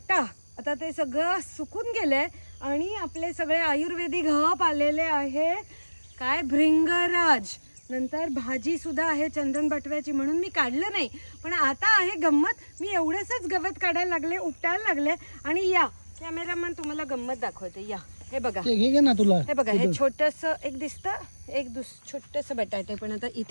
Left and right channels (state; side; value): inverted; both; correlation -1.00